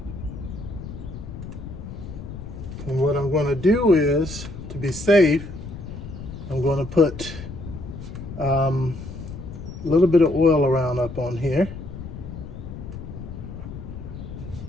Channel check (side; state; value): left; noise; rumble, 10 dB below the sound